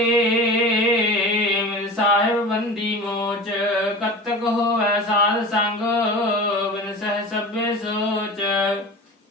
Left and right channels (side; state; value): both; normal; correlation 0.33